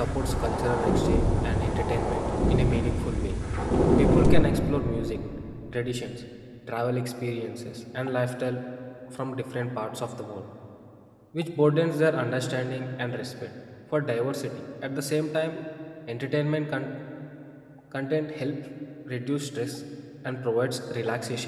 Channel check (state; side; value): identical; both; correlation 1.00